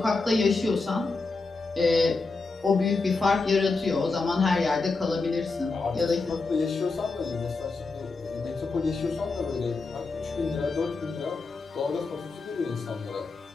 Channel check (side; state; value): right; quieter; 3.9 dB